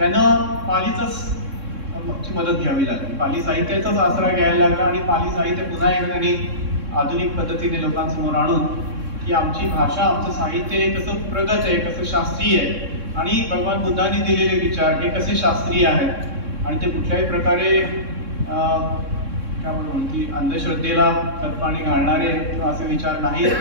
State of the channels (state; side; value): late; left; 3.6 ms